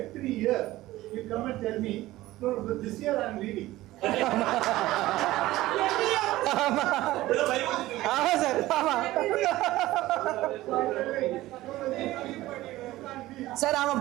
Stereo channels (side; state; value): left; quieter; 16.9 dB